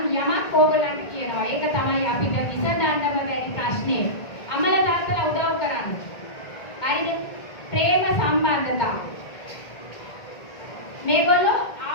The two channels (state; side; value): late; right; 2.1 ms